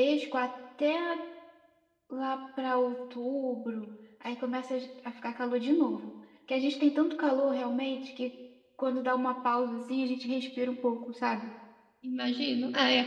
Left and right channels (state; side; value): identical; both; correlation 1.00